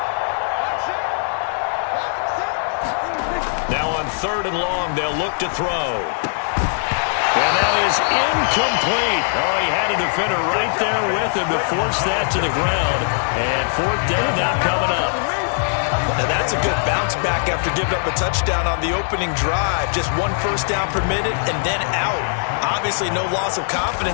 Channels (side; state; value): right; silent; 65 dB below the other